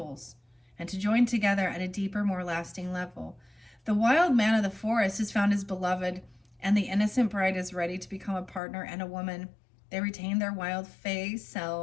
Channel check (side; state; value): right; drops out; at 8.6 s